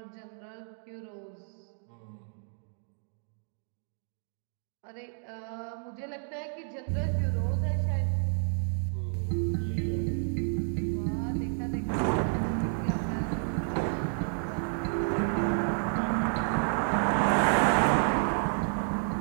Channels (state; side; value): silent; left; 57 dB below the other